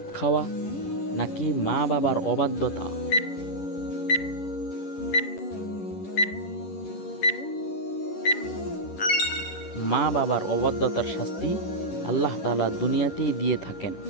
খাওয়া, নাকি মা বাবার অবাধ্যতা। মা বাবার অবাধ্যতার শাস্তি আল্লাহ তাআলা দুনিয়াতেই দিয়ে থাকেন।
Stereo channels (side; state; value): right; late; 11 ms